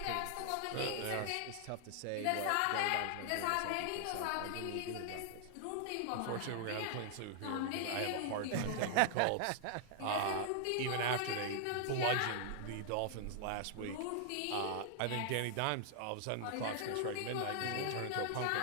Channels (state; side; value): different; both; correlation 0.00